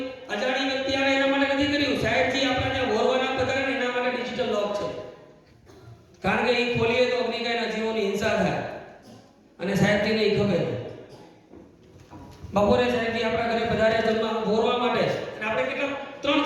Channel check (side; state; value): both; identical; correlation 1.00